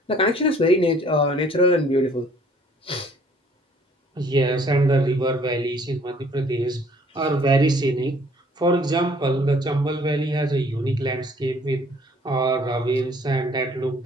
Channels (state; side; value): normal; both; correlation 0.58